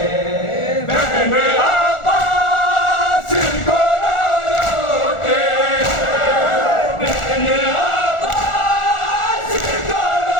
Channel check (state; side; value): late; right; 1.4 ms